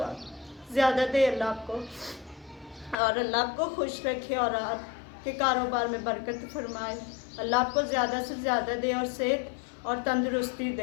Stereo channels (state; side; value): drops out; right; at 3.0 s